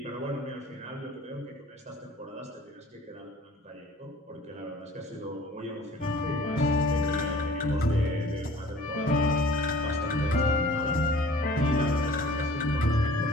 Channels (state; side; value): normal; both; correlation 0.48